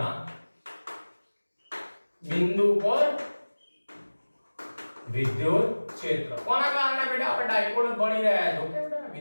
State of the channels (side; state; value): both; inverted; correlation -1.00